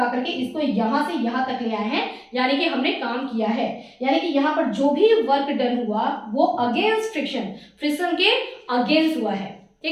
करके इसको यहां से यहां तक ले आए हैं, यानी कि हमने काम किया है। यानी कि यहाँ पर जो भी वर्क डन हुआ वो अगेंस्ट फ्रिक्शन के अगेंस्ट हुआ है,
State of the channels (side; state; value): both; identical; correlation 1.00